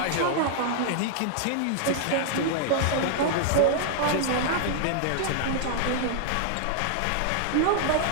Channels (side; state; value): both; different; correlation -0.01